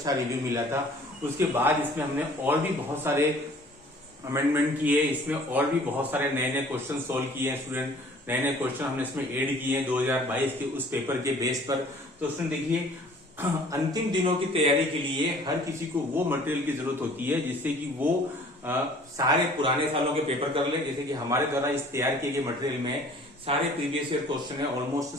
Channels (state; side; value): normal; both; correlation 0.51